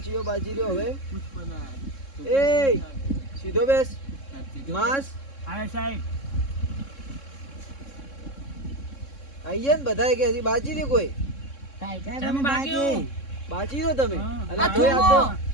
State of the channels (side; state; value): right; late; 3.6 ms